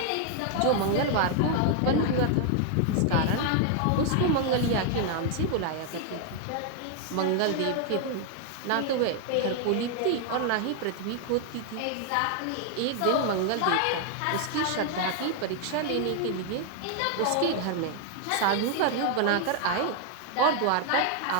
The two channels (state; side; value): different; both; correlation 0.00